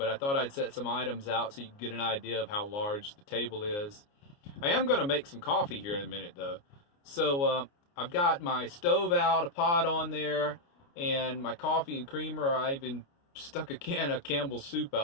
I thought I'd set some items out so you can get an idea of how large the table is. I am going to make some coffee here in a minute though. So I've got my stove out, a pot on there, and my coffee and creamer. I even stuck a can of Campbell's soup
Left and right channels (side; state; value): right; late; 29 ms